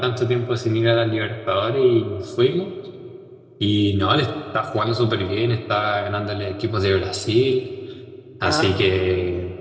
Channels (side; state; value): both; identical; correlation 1.00